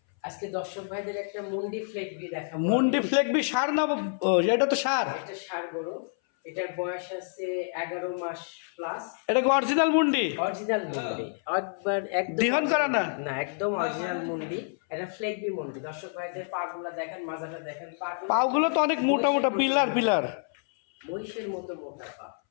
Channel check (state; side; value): silent; right; 59 dB below the other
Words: আজকে দর্শক ভাইদের একটা মুন্ডি ফ্লেগবি দেখাবো। মুন্ডি ফ্লেগবি সার না? এটা তো সার। এটা সার গরু। এটার বয়স আছে 11 মাস প্লাস। এটা কি অরিজিনাল মুন্ডি? অরিজিনাল মুন্ডি, একবার একদম দিহন করা না? না, একদম অরিজিনাল মুন্ডি। এটা ফ্লেগবি মুন্ডি। দর্শক ভাইদের পাগুলা দেখেন, মাজাটা দেখেন, পাগুলো তো অনেক মোটা মোটা, পিলার পিলার, মহিষের মতো মোটা পা।